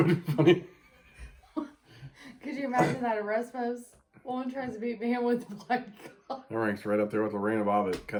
be funny. Could you imagine that arrest post? Woman tries to beat man with the black cock. That ranks right up there with Lorena Bobbitt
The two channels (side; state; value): both; identical; correlation 1.00